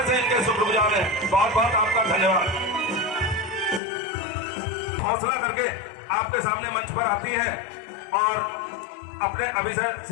से इनके शुक्रगुजार हैं। बहुत बहुत आपका धन्यवाद। हौसला करके आपके सामने मंच पर आती हैं और अपने अभिषेक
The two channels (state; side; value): drops out; right; at 3.8 s